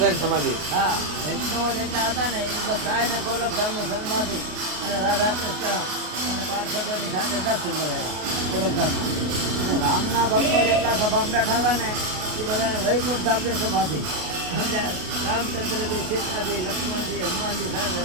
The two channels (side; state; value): left; late; 33 ms